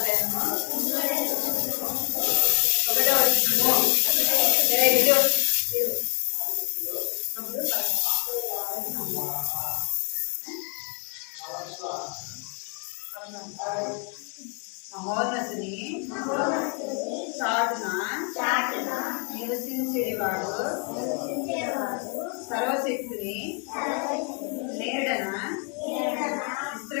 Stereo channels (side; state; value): right; quieter; 37.9 dB